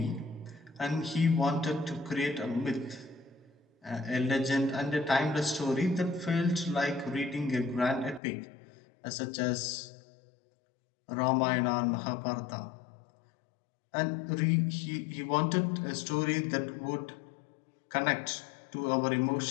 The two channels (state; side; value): drops out; right; at 8.2 s